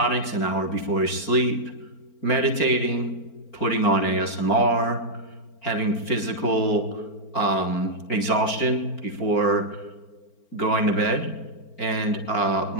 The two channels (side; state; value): right; late; 4.4 ms